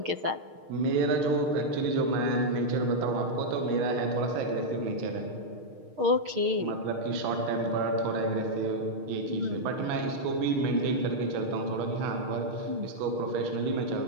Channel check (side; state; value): left; late; 6.5 ms